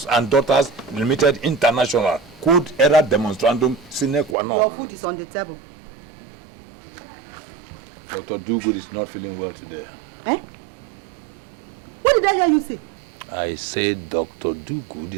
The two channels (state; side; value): drops out; left; at 4.4 s